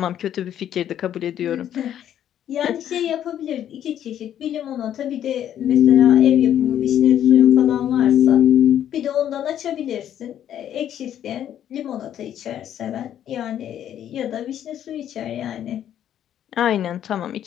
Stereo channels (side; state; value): right; quieter; 10.5 dB